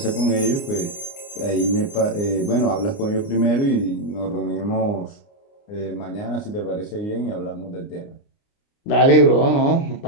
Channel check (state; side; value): late; right; 29 ms